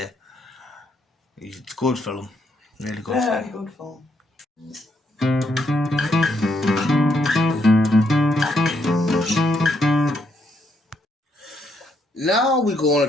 It's a good film. Really good film. Very good film. Now we're going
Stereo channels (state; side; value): normal; both; correlation 0.75